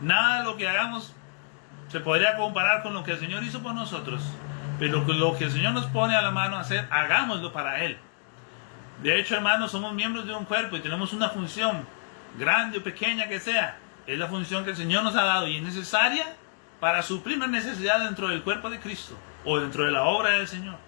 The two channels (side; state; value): right; silent; digital silence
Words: Nada de lo que hagamos se podría comparar con lo que el Señor hizo por nosotros, pero lo que el Señor nos pone a la mano a hacer, hagámoslo para Él. De hecho, hermanos, somos miembros de un cuerpo y tenemos una función, grande o pequeña que sea. Es la función que el Señor nos ha dado y es necesaria para suplir una necesidad dentro del cuerpo de Cristo o dentro de la obra del Señor.